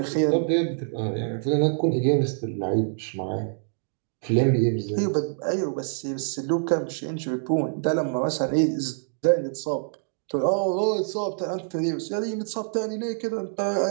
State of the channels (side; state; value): left; silent; digital silence